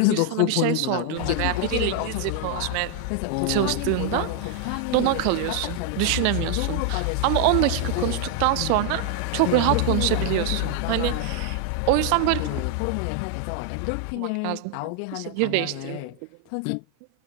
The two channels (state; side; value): different; both; correlation 0.00